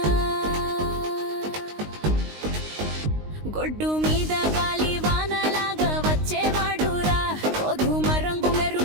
గొడ్డు మీద గాలి వానలాగా వచ్చేవాడురా, గోధుమ రంగు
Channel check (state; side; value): late; left; 19 ms